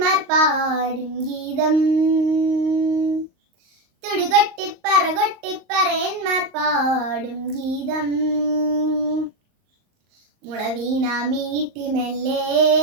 പാടും ഗീതം. തുടികൊട്ടിപ്പറകൊട്ടിപ്പറയന്മാർ പാടും ഗീതം. മുളവീണ മീട്ടി മെല്ലെ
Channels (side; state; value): left; late; 38 ms